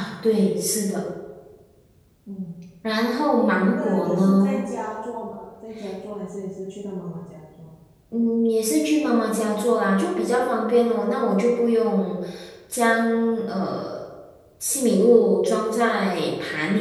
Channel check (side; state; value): both; identical; correlation 1.00